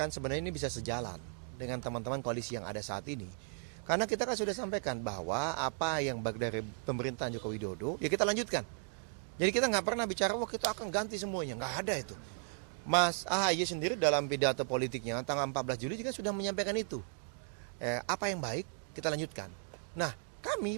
sebenarnya ini bisa sejalan dengan teman-teman koalisi yang ada saat ini. Karena kita kan sudah sampaikan bahwa apa yang baik dari pemerintahan Joko Widodo ya kita lanjutkan. Jadi kita nggak pernah bicara wah kita akan ganti semuanya, nggak ada itu. Mas AHY sendiri dalam pidato politiknya tanggal 14 Juli juga sudah menyampaikan itu. Apa yang baik kita lanjutkan. Nah,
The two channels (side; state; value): left; silent; 54 dB below the other